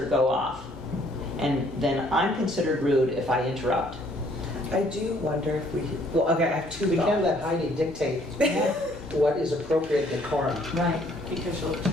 go off. And then I'm considered rude if I interrupt. I do wonder if we, well, okay, I have two We can't thoughts. let Heidi dictate what is appropriate decorum. Right. Because she'll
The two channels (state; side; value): normal; both; correlation 0.63